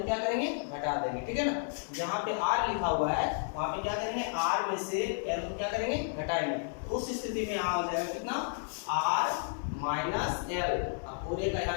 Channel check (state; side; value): silent; right; 56 dB below the other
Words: क्या करेंगे, घटा देंगे, ठीक है ना। जहाँ पे R लिखा हुआ है वहाँ पे क्या करेंगे, R में से L को क्या करेंगे, घटाएंगे। तो उस स्थिति में यहाँ हो जाएगा कितना, R माइनस L, पूरे का